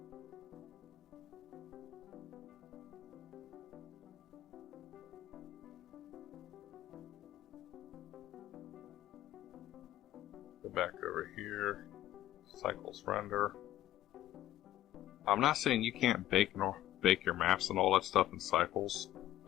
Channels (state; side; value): quieter; right; 13.6 dB